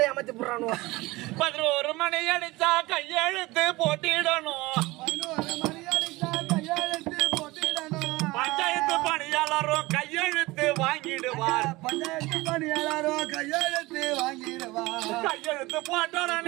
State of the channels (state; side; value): quieter; left; 21.1 dB